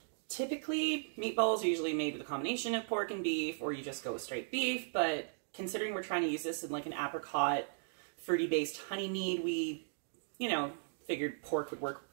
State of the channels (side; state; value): left; silent; digital silence